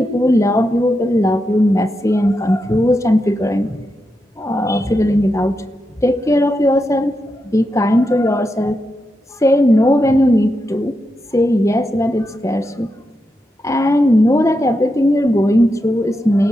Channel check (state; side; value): normal; both; correlation 0.86